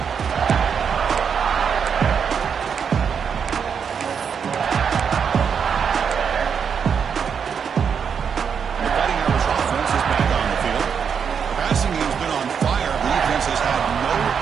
The Fighting Irish offense is back on the field. The passing game's been on fire. The defense has had no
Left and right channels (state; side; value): quieter; left; 6.9 dB